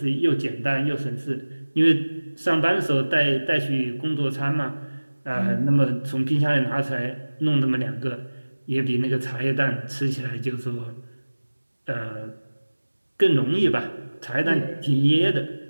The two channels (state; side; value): inverted; both; correlation -1.00